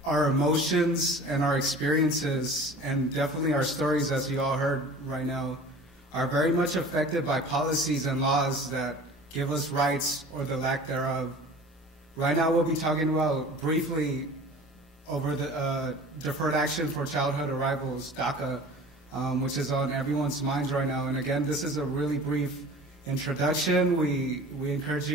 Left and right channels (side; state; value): both; normal; correlation 0.43